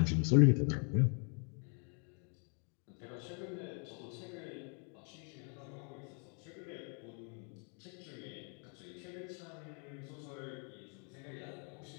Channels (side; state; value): right; quieter; 39.3 dB